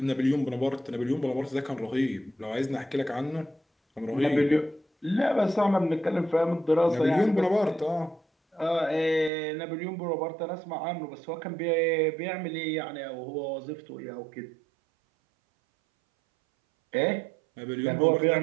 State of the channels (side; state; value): left; drops out; at 9.3 s